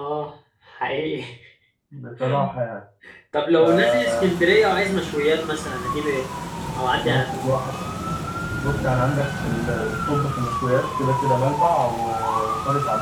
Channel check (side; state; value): both; identical; correlation 1.00